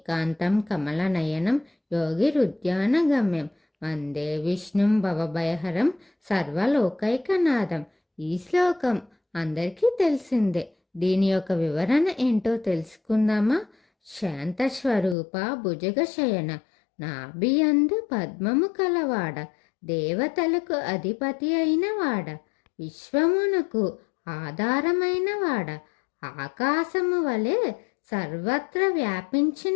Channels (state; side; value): drops out; right; at 15.2 s